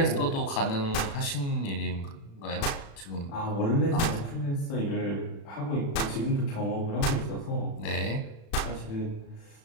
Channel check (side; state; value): right; late; 36 ms